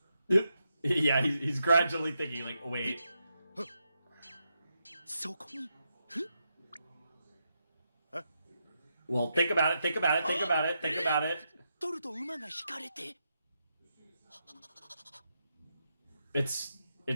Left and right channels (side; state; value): both; inverted; correlation -0.83